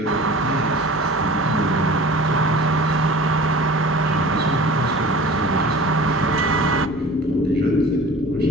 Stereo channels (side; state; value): both; normal; correlation 0.41